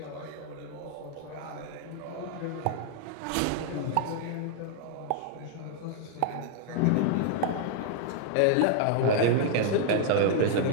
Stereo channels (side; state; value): both; different; correlation 0.00